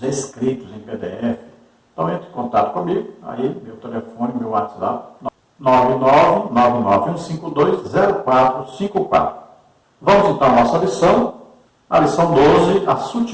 escritos em PDF, então entre em contato comigo, aí meu telefone, meu WhatsApp, 991520454. Vamos então à nossa lição, a lição 12, a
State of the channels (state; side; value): identical; both; correlation 1.00